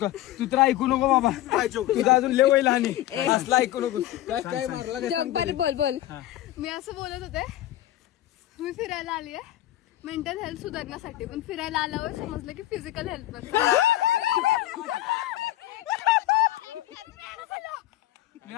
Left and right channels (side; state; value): right; quieter; 14.6 dB